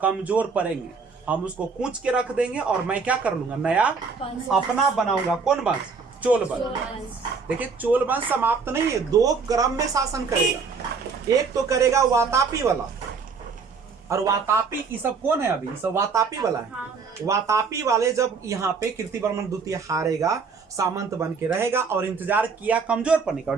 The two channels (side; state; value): left; quieter; 5.1 dB